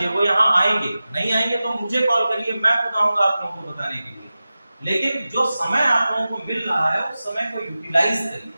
वो यहाँ आएंगे, नहीं आएंगे तो मुझे कॉल करिए, मैं बताऊंगा आप लोगों को बताने के लिए। लेकिन जो समय आप लोगों को मिल रहा है उस समय को यूटिलाइज करिए।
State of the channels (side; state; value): both; inverted; correlation -0.95